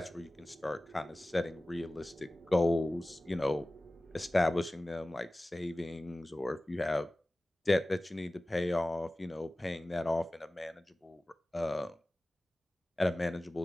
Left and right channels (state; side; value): normal; both; correlation 0.97